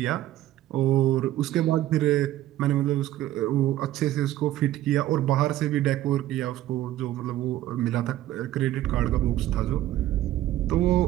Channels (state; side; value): quieter; left; 14.0 dB